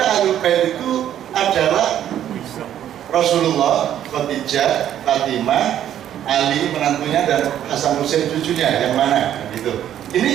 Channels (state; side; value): quieter; left; 10.8 dB